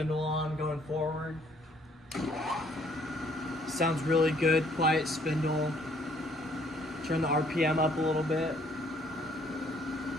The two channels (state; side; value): normal; both; correlation 0.63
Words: on going forward. Sounds really good, quiet spindle. Turn the RPM up a little bit.